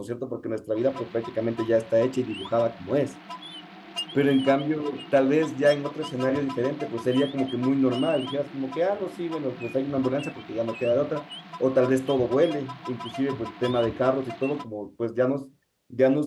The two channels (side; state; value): both; identical; correlation 1.00